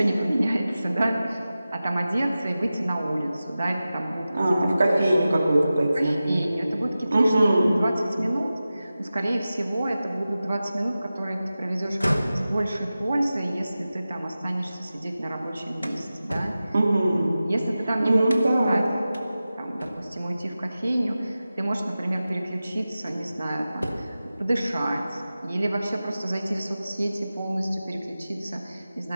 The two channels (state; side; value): inverted; both; correlation -0.95